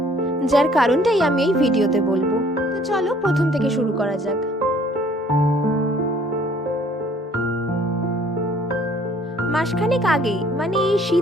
যার কারণটাই আমি এই ভিডিওতে বলবো। তো চলো প্রথম থেকে শুরু করা যাক। মাসখানেক আগেই, মানে এই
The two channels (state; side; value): normal; both; correlation 0.58